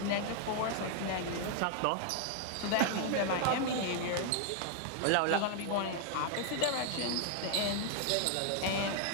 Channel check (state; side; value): different; both; correlation 0.00